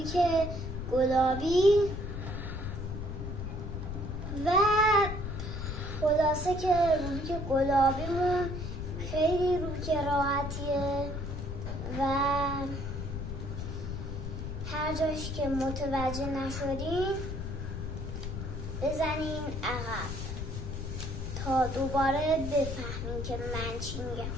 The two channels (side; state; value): left; noise; rumble, 5 dB below the sound